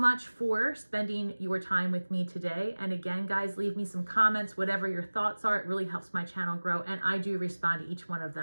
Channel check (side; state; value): both; inverted; correlation -1.00